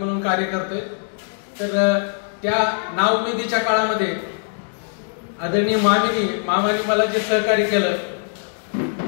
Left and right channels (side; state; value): right; silent; digital silence